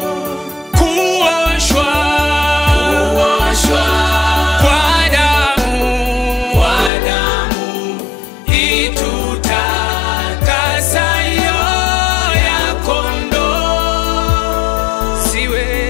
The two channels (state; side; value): drops out; right; at 6.9 s